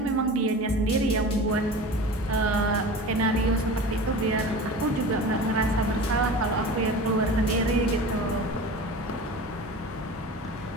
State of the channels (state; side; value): normal; both; correlation 0.35